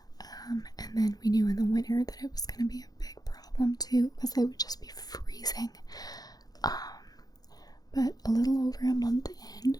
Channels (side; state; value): right; late; 0.19 ms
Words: And then we knew in the winter that it was going to be a big problem too, because they would just be freezing. But a little over a month in,